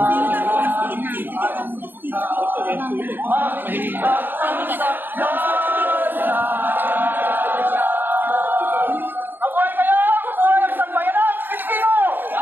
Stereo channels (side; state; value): left; late; 0.094 ms